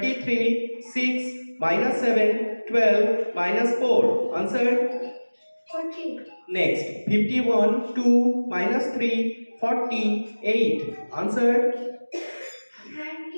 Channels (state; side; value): inverted; both; correlation -1.00